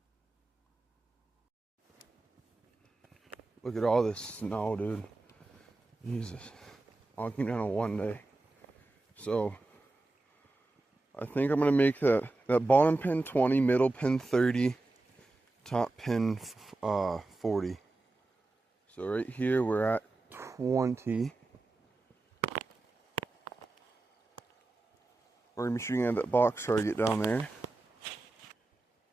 Look at all this snow, dude. Jesus. All came down in one day. So, I think I'm gonna make that bottom pin 20, middle pin 30, top pin 40. So right here we're at 20. We're gonna be shooting at that box target down there.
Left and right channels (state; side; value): quieter; left; 3.1 dB